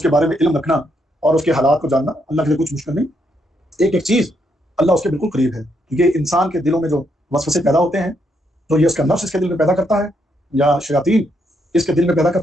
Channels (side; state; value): both; normal; correlation 0.77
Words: کے بارے میں علم رکھنا اور اس کے حالات کو جاننا اللہ کے لیے کچھ مشکل نہیں۔ ایک چیز اللہ اس کے بالکل قریب ہے، کیونکہ انسان کے دلوں میں جو وسوسے پیدا ہوتے ہیں تو یہ اس کا نفس اس کے دل میں پیدا کرتا ہے یا شیاطین اس کے دل میں پیدا